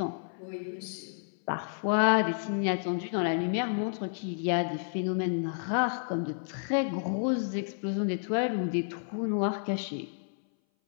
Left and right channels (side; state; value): right; silent; 57 dB below the other